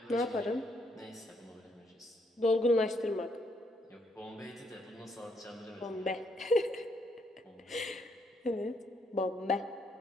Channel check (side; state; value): both; normal; correlation 0.73